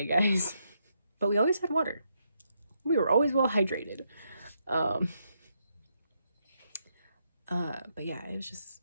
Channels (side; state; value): both; inverted; correlation -0.79